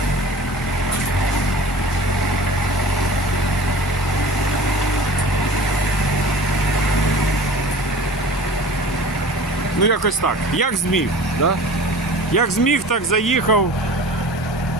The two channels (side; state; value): both; normal; correlation 0.41